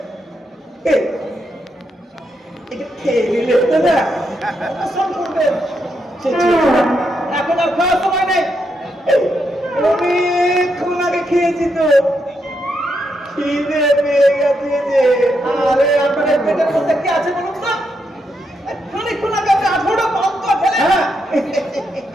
এটা খেয়ে নিলে তো না অনশন করবেন। এখন আর খাওয়ার সময় নেই। অনেকক্ষণ আগে খেয়েছি তো, খিদে পেয়ে গেছে যে। আরে আপনাদের পেটের মধ্যে কি আছে বলুন তো? খানিকক্ষণ আগে আপনি 18টা পান্তা খেলেন। হ্যাঁ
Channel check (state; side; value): normal; both; correlation 0.81